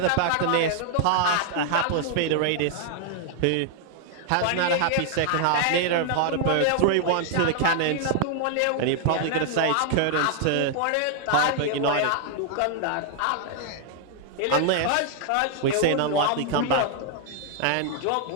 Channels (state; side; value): different; both; correlation 0.00